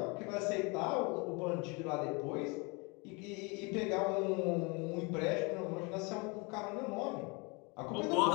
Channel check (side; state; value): right; quieter; 29.4 dB